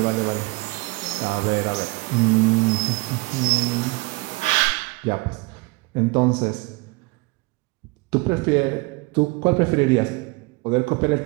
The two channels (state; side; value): quieter; left; 24.4 dB